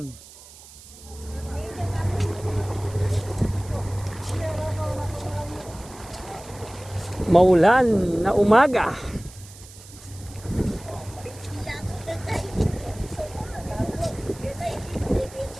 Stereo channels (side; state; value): right; noise; hiss, 19 dB below the sound